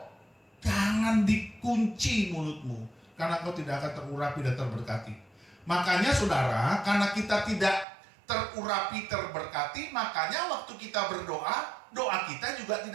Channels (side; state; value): left; drops out; at 7.9 s